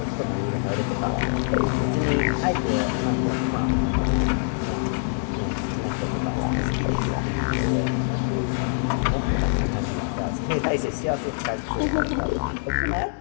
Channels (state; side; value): silent; right; 62 dB below the other